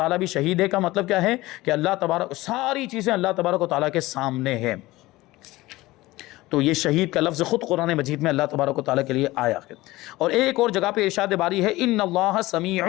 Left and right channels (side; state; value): right; quieter; 18.9 dB